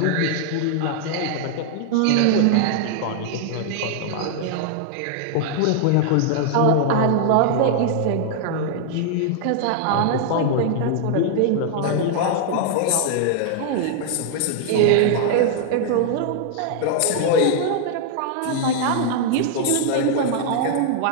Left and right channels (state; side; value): different; both; correlation 0.00